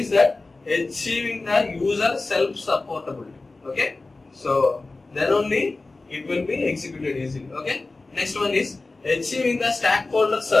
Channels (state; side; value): quieter; right; 3.4 dB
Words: that achieving the user self-supportability. Okay, so then only it will be executed easily. Okay, next one is achieving the stakeholders